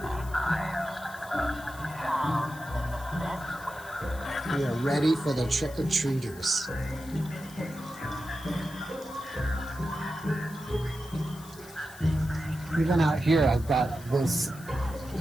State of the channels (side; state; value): left; noise; hiss, 19 dB below the sound